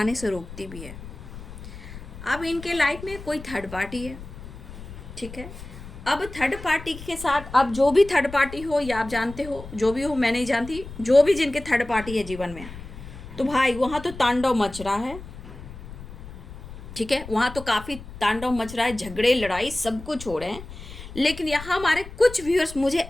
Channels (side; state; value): left; noise; rumble, 14 dB below the sound